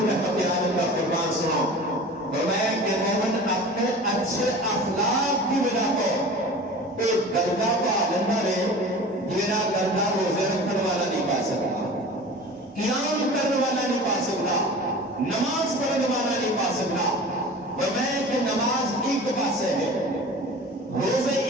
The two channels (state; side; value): normal; both; correlation 0.38